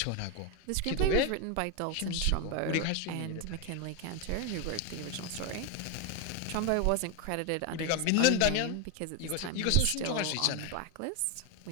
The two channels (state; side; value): different; both; correlation 0.01